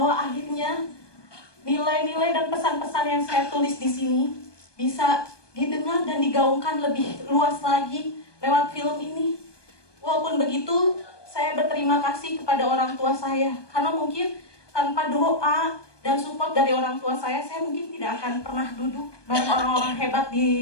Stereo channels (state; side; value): late; right; 1.2 ms